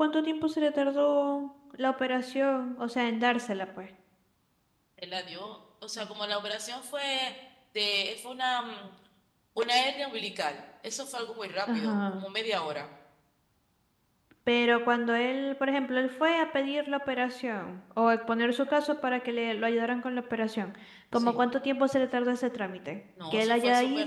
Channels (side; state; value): both; identical; correlation 1.00